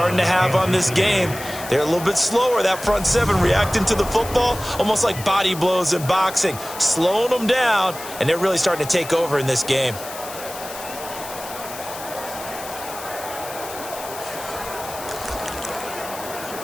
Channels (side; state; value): left; noise; hiss, 12 dB below the sound